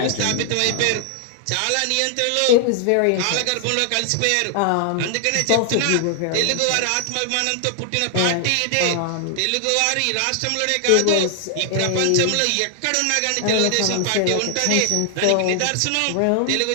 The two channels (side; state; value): both; different; correlation 0.00